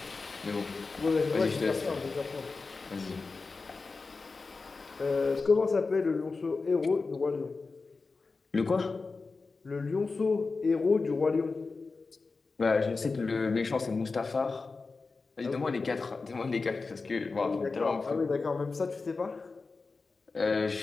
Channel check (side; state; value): right; quieter; 4.1 dB